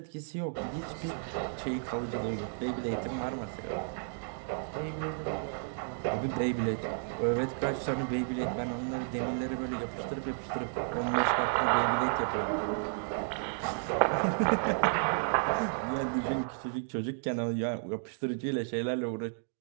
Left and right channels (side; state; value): left; silent; digital silence